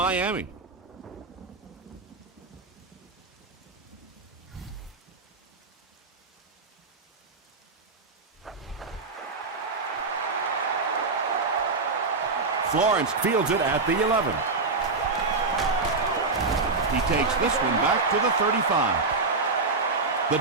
Florence fields it at the 11. He takes this one back to the 35. The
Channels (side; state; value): left; quieter; 4.0 dB